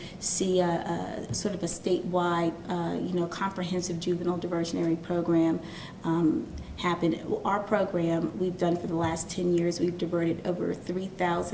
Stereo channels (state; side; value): identical; both; correlation 1.00